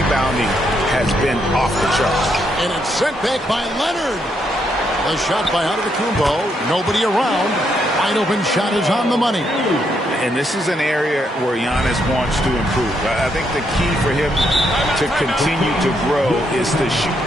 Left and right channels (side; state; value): both; normal; correlation 0.76